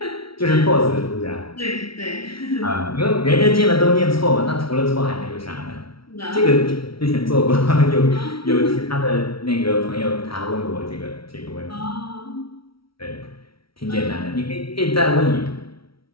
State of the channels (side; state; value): right; late; 0.75 ms